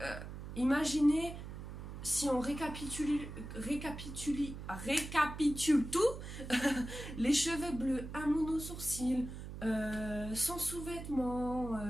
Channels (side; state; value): right; noise; hum, 9 dB below the sound